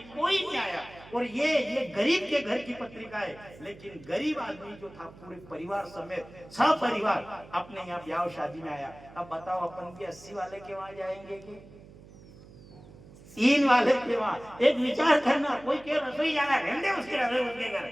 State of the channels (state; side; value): noise; right; hum, 20 dB below the sound